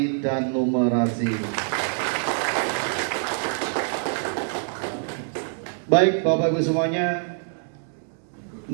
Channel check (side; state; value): left; silent; digital silence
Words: dan numerasi. Baik Bapak Ibu semuanya,